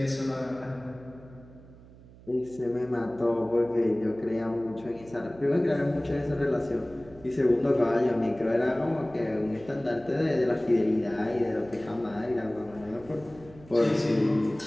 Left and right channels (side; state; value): right; noise; hum, 21 dB below the sound